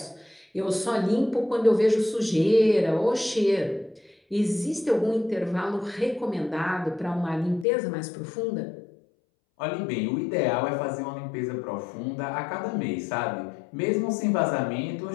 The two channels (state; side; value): drops out; right; at 7.7 s